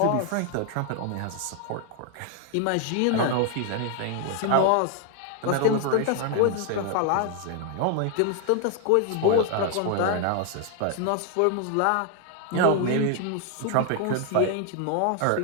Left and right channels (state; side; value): different; both; correlation 0.00